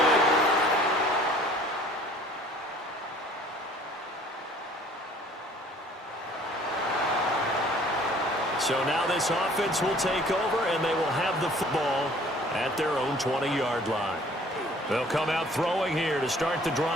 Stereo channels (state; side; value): normal; both; correlation 0.54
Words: So now this offense will take over, and they will have the football at their own 20-yard line. They'll come out throwing here to start the